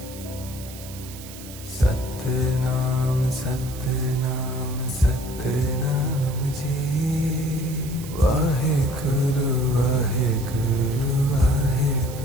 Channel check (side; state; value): right; noise; hiss, 15 dB below the sound